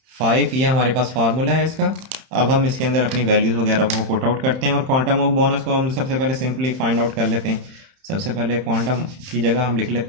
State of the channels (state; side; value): late; left; 31 ms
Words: 5। ये हमारे पास फार्मूला है इसका। अब हम इसके अंदर अपनी वैल्यूज़ वगैरह को पुट आउट करते हैं और क्वांटम ऑफ बोनस को हम सबसे पहले सिंपली फाइंड आउट कर लेते हैं। सबसे पहले क्वांटम की जगह हम लिख